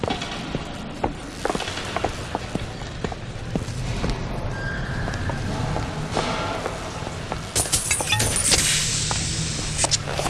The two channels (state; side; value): identical; both; correlation 1.00